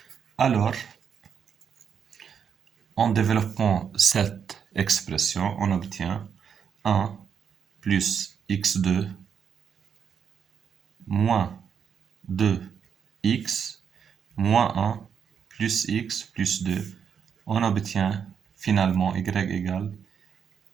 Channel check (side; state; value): left; quieter; 7.3 dB